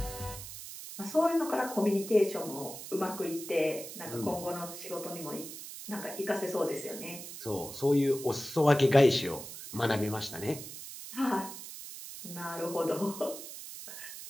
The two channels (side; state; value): right; noise; hiss, 11 dB below the sound